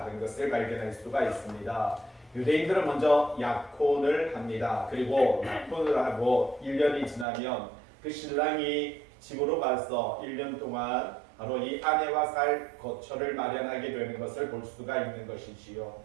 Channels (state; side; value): drops out; left; at 7.2 s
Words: 것을 발견할 수가 있습니다. 유대인들은 먼저 약혼을 합니다. 그리고 약혼을 하고 1년이 지나면 그 신랑이 집으로 가서 1년 동안 바로 이 아내와 살 거처를 마련하게 되는 것을 볼 수가 있는 것이지요.